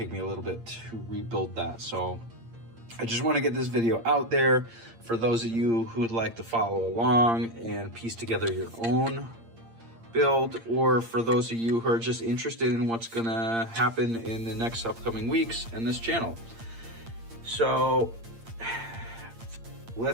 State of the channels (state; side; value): late; left; 8.7 ms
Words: me a little bit to rebuild that. So I just want to get this video out there for those of you who would like to follow along and piece together your own build, or for those of you who are just interested in what's going to happen in the next upcoming weeks in this channel. So